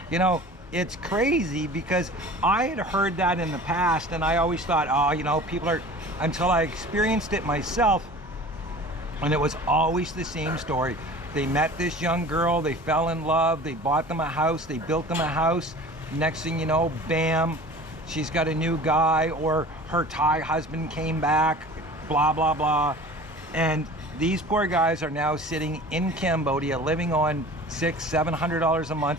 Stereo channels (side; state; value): both; normal; correlation 0.42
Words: You know, it's crazy because I had heard that in the past, and I always thought, oh, you know, people are, until I experienced it myself, and it was always the same story. They met this young girl, they fell in love, they bought them a house, they built them a house. Next thing you know, bam, she's got a new guy, or her Thai husband came back, blah, blah, blah. And these poor guys are now sitting in Cambodia living on $600-700 a